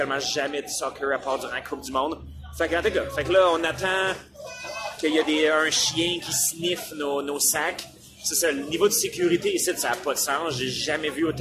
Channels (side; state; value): both; identical; correlation 1.00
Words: jamais du soccer à part durant la Coupe du Monde. Fait que là, on attend qu'il y ait un chien qui sniffe nos sacs. C'est ça, le niveau de sécurité ici, ça n'a pas de sens. J'ai jamais vu